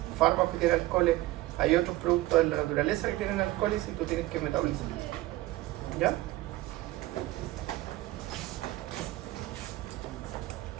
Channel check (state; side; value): quieter; left; 17.6 dB